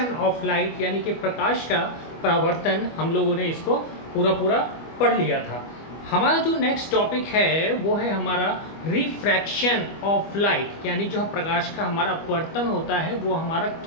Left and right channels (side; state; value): right; late; 25 ms